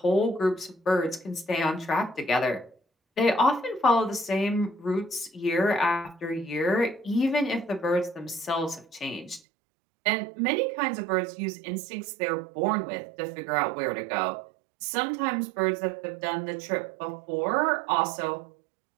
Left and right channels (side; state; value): left; drops out; at 9.4 s